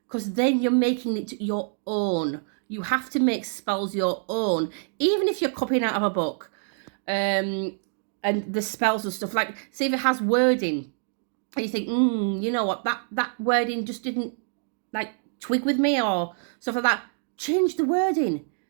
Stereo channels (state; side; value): silent; left; 61 dB below the other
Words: because then you're making it your own. You have to make spells your own, even if you're copying out of a book. And the spells and stuff, like, say if it has wording and you think, you know what, that wording just didn't like twig with me or stuff like that, change the wording.